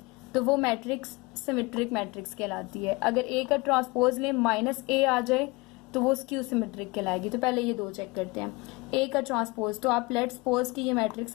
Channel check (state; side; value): quieter; right; 24.6 dB